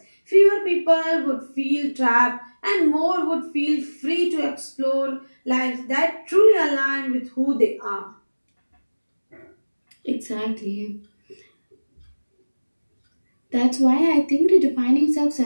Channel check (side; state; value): both; inverted; correlation -1.00